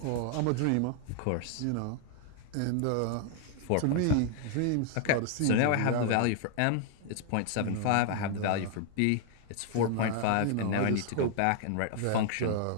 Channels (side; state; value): both; different; correlation 0.00